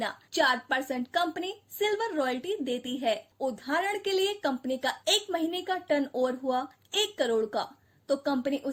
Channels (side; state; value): both; identical; correlation 1.00